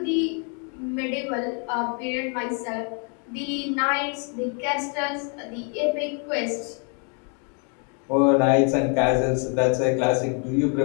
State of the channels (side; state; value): right; quieter; 39.7 dB